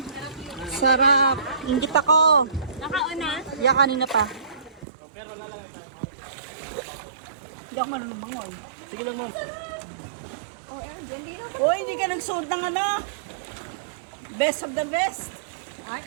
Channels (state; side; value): drops out; left; at 4.9 s